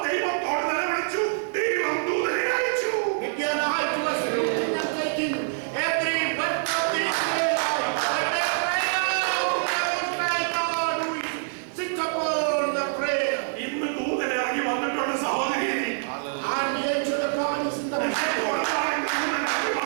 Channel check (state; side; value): silent; left; digital silence